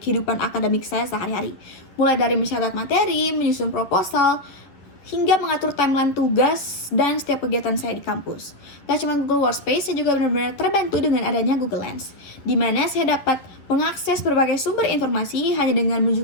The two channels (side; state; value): right; late; 11 ms